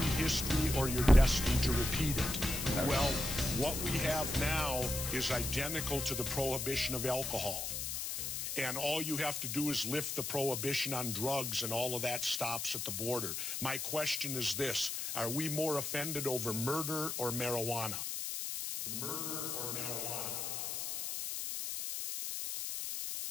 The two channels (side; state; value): left; noise; hiss, 3 dB below the sound